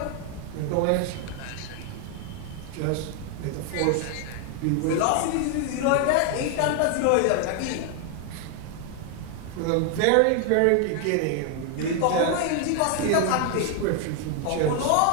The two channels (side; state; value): both; different; correlation 0.00